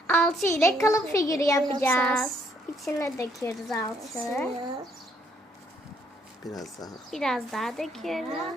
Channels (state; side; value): normal; both; correlation 0.69